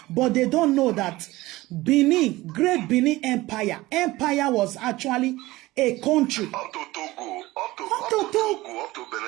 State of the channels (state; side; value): quieter; left; 18.9 dB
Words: But they don't know that Benin, great Benin Empire was actually a country. Up to Togo, up to